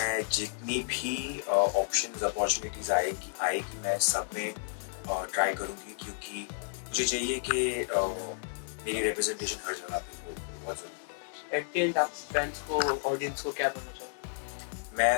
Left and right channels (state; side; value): silent; right; digital silence